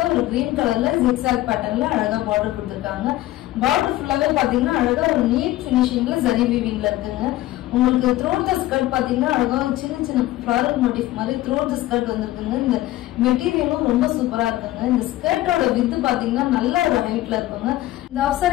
ஒரு கிரீன் கலர்ல ஜிக்ஸாக் பேட்டர்ன்ல அழகா பார்டர் கொடுத்திருக்காங்க. பார்டர் ஃபுல்லாவே பாத்தீங்கன்னா அழகா ஒரு நீட் ஃபினிஷிங்ல ஜரி வீவிங்ல இருக்குங்க. உங்களுக்கு த்ரோட் த ஸ்கர்ட் பாத்தீங்கன்னா அழகா சின்ன சின்ன ஃபிளாரல் மோட்டிவ் மாதிரி த்ரோட் த ஸ்கர்ட் வந்திருக்குங்க. இந்த மெட்டீரியலும் ரொம்ப சூப்பரா இருக்குங்க. இந்த ஸ்கர்ட்டோட வித் பாத்தீங்கன்னா நல்ல ஒரு ஹைட்ல இருக்குங்க. இந்த ஆஃப்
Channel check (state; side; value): quieter; right; 16.0 dB